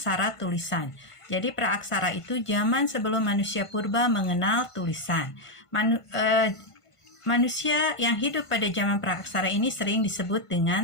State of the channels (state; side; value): late; right; 1.5 ms